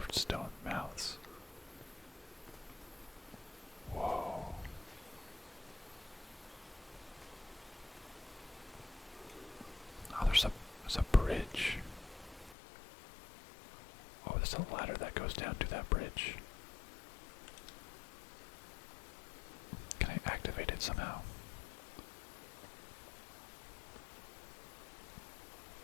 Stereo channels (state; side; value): drops out; right; at 12.6 s